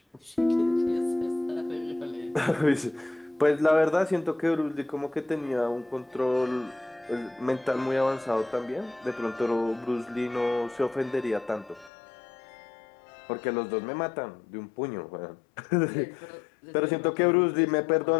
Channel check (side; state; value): right; drops out; at 11.9 s